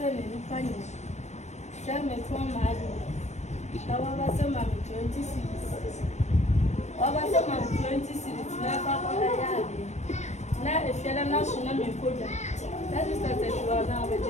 Now, if you're not national, that is that you are now a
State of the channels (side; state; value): right; late; 0.33 ms